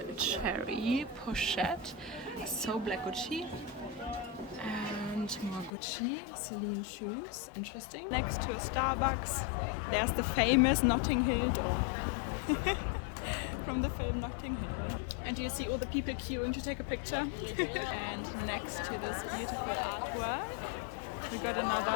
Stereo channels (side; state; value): right; drops out; at 5.7 s